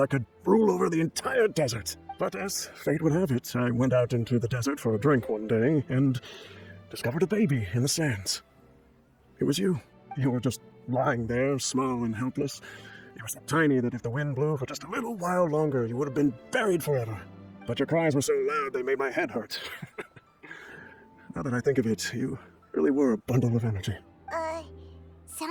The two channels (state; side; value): identical; both; correlation 1.00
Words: could rule over the entire desert. But as fate would have it, I went out into the desert for a drink one day and discovered a baby in the sands. It was you. You were just lying there, small and helpless. You were so tiny that if the wind blew for just a little while longer, you would have been buried forever. But your cries were so loud they made my head hurt. Now that I think of it, you really were a bundle of energy. Sounds